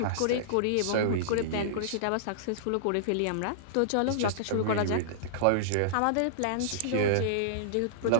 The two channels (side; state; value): both; different; correlation -0.02